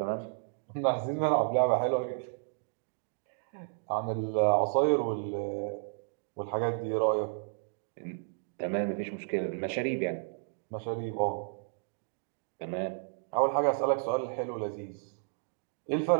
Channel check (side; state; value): left; silent; digital silence